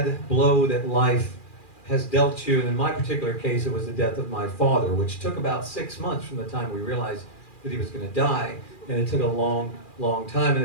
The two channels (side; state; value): right; late; 2.4 ms